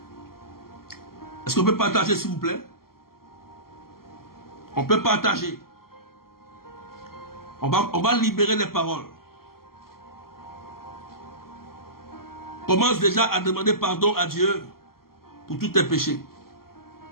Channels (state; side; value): late; right; 0.92 ms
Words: Est-ce qu'on peut partager, s'il vous plaît? On peut partager. On va libérer les paroles. Commence déjà à demander pardon à Dieu pour tous tes péchés.